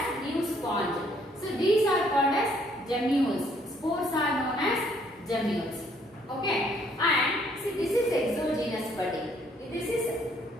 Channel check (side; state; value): both; normal; correlation 0.66